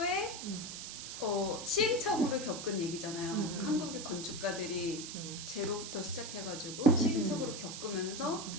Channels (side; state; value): right; noise; hiss, 8 dB below the sound